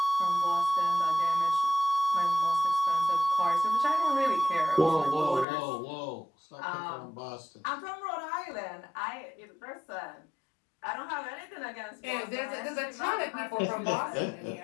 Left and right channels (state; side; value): drops out; right; at 5.5 s